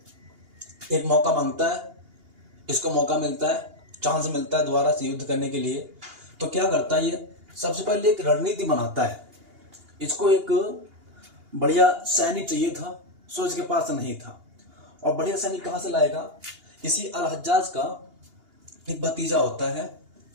एक मौका मांगता है, इसको मौका मिलता है, चांस मिलता है दोबारा से युद्ध करने के लिए। तो क्या करता है, ये सबसे पहले एक रणनीति बनाता है। इसको एक बढ़िया सैनिक चाहिए था, सो इसके पास नहीं था। और बढ़िया सैनिक कहाँ से लाएगा, इसी अल हज्जाज का एक भतीजा होता है।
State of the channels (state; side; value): late; left; 2.8 ms